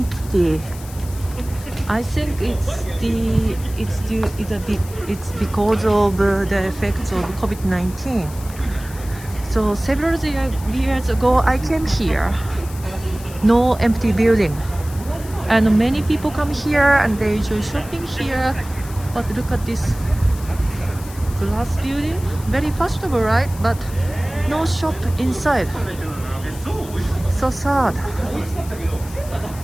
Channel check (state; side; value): noise; left; hiss, 17 dB below the sound